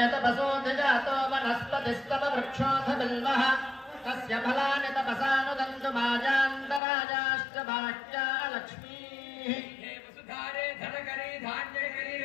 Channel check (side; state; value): right; drops out; at 6.8 s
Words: तपसोऽधिजातो वनस्पतिस्तव वृक्षोऽथ बिल्वः तस्य फलानि तपसानुदन्तु माजान्तराजाश्च बाह्या लक्ष्मीः हे वसुधारे धनकरी धान्यकरी